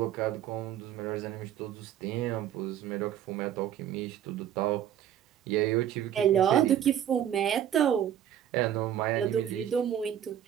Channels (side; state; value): left; quieter; 10.4 dB